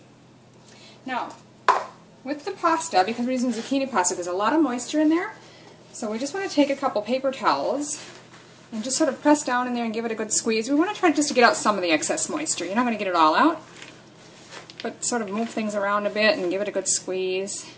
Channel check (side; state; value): both; identical; correlation 1.00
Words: Now, with the pasta, because we're using zucchini pasta, there's a lot of moisture in there, so we just want to take a couple paper towels and just sort of press down in there and give it a good squeeze. We want to try just to get out some of the excess moisture. You're not going to get it all out, but sort of move things around a bit and give it a good squeeze,